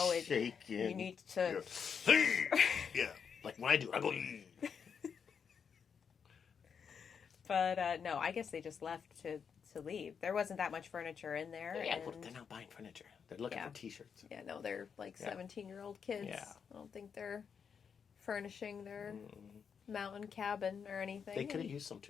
Shaking. You need to. Yeah. Like when I do, I go. But no, I guess they just left to leave. There wasn't that much furniture in there. Yeah, and... well, they're not buying furniture. They're looking for T-shirts. Yeah, no, they're like Yeah. 17-year-old kids. Yeah. I don't think they're furnishing their mountain cabin or anything. They could have used some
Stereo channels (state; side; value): quieter; right; 6.7 dB